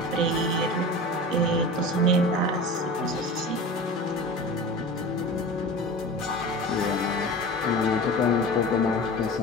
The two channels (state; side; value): normal; both; correlation 0.33